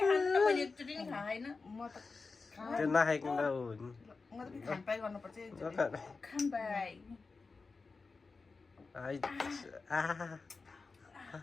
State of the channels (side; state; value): right; quieter; 4.2 dB